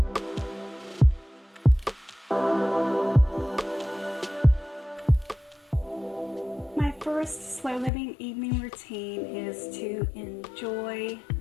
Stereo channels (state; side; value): drops out; right; at 7.9 s